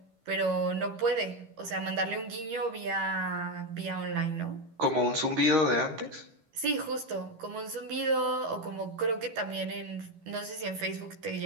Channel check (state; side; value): late; left; 13 ms